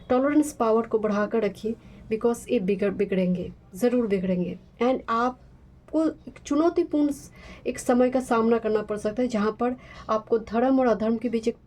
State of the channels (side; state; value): both; identical; correlation 1.00